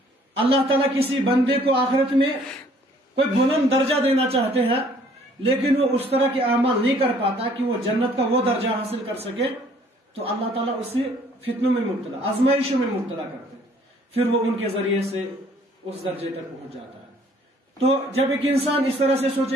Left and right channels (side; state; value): both; normal; correlation 0.59